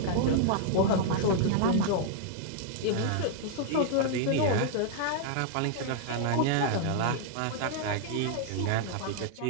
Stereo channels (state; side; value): different; both; correlation 0.00